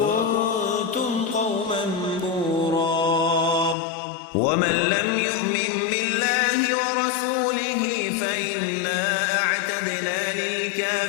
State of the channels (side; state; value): right; drops out; at 3.8 s